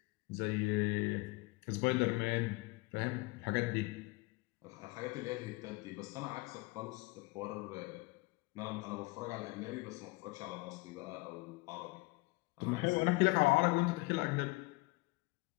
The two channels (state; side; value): quieter; right; 24.2 dB